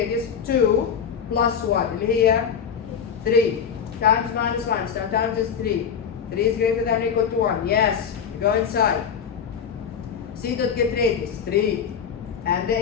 2 plus 1. Here 3 times minus minus. Now times is 3. 3 is greater than or equal to 1. Yes. Go inside. C dot get radius 3 and the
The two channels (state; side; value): quieter; right; 7.3 dB